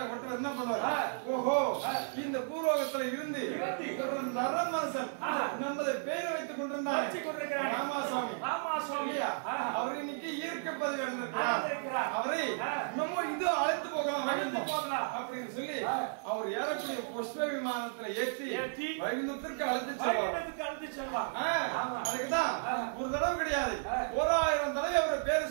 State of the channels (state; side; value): silent; left; 55 dB below the other